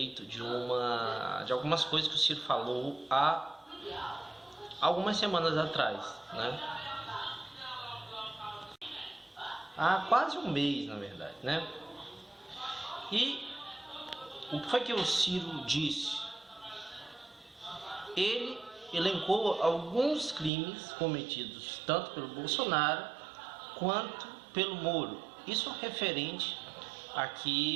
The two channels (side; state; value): left; drops out; at 20.5 s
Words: de algumas coisas que o Ciro falou há algumas semanas atrás, né? Há quase um mês, na verdade, né? E o que foi que o Ciro disse? Ele elencou alguns crimes cometidos tanto pelo Bolsonaro quanto pelo Moro. Isso referente